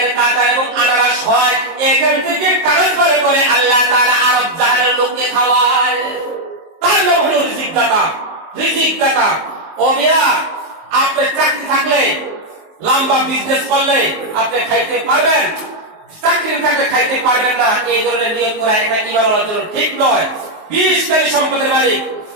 কাঁঠাল এবং আনারস হয়, এখান থেকে ট্রান্সফার করে আল্লাহ তাআলা আরব জাহানের লোককে খাওয়ায়। তার নাম হলো রিজিক দাতা। ও মিয়া, আপনি চাকরি থাকলে, লম্বা বিজনেস করলে আপনি খাইতে পারবেন, চাকরি থাকলে খাইতে পারবেন না, এই ধরনের নিয়ত করা এটা ঈমান আনার জন্য ঠিক নয়। 20 কোটি সম্পদের মালিক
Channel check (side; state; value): left; late; 18 ms